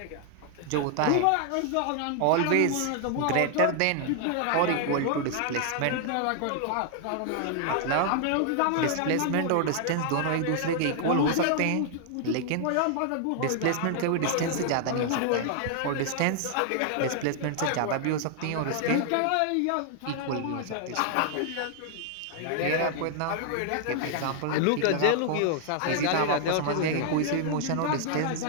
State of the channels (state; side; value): different; both; correlation 0.00